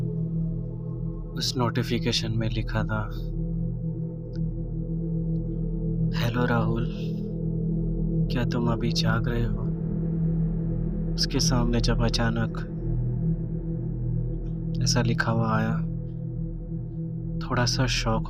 उस नोटिफिकेशन में लिखा था, हेलो राहुल, क्या तुम अभी जाग रहे हो? उसके सामने जब अचानक ऐसा लिखा हुआ आया, थोड़ा सा शॉक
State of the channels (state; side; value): identical; both; correlation 1.00